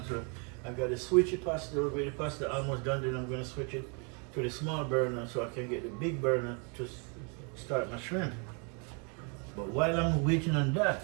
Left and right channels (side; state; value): left; quieter; 36.3 dB